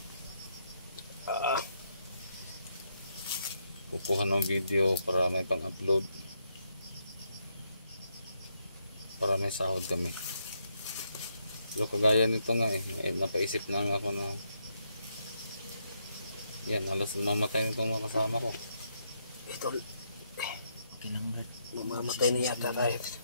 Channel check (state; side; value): inverted; both; correlation -0.78